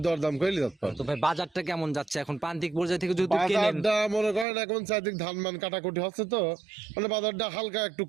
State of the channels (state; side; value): drops out; left; at 4.5 s